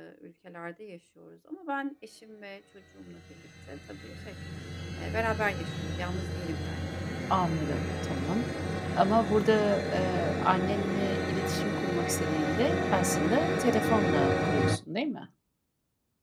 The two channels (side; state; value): both; identical; correlation 1.00